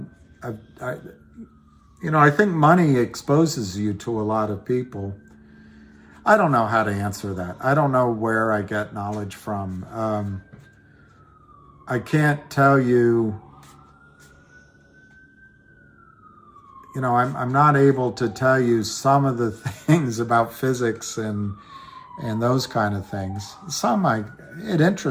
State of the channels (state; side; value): identical; both; correlation 1.00